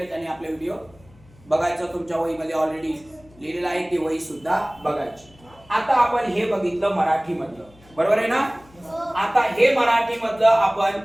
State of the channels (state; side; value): noise; left; hum, 26 dB below the sound